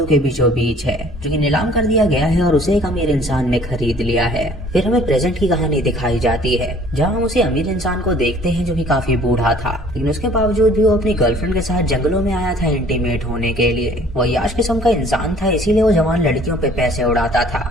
के बीचों बीच है जो कि नीलाम कर दिया गया है और उसे एक अमीर इंसान ने खरीद लिया है। फिर हमें प्रेजेंट की कहानी दिखाई जाती है, जहाँ हम उसे अमीर इंसान को देखते हैं जो कि काफी बूढ़ा था, लेकिन उसके बावजूद भी वो अपनी गर्लफ्रेंड के साथ जंगलों में आया था इंटीमेट होने के लिए। वो अय्याश किस्म का इंसान था, इसीलिए वो जवान लड़कियों पे पैसे उड़ाता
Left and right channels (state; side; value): normal; both; correlation 0.54